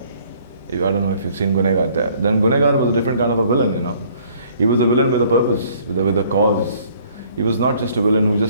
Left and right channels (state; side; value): inverted; both; correlation -0.59